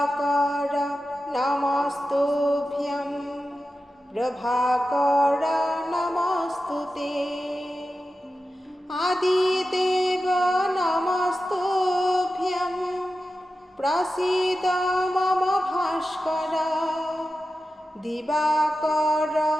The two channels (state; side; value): normal; both; correlation 0.92